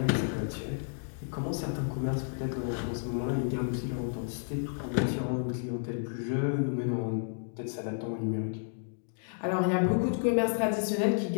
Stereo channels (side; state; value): right; silent; digital silence